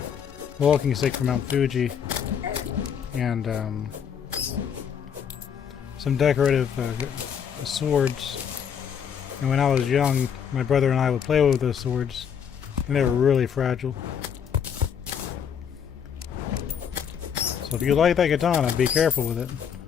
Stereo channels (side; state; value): right; quieter; 7.8 dB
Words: walking stick from Mount Fuji, and some decorative swords. And when I was young, my brother and I would play with those swords, and they were really fragile. So if you like that katana, be careful with it.